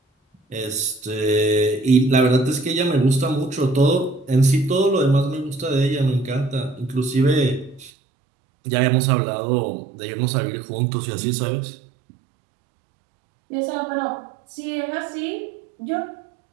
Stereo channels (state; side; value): drops out; left; at 7.9 s